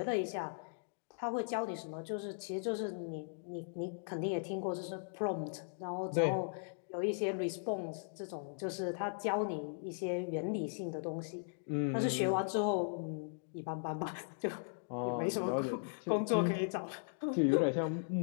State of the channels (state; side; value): silent; right; digital silence